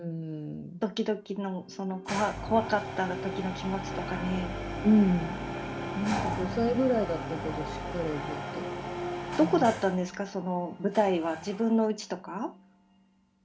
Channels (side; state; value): both; identical; correlation 1.00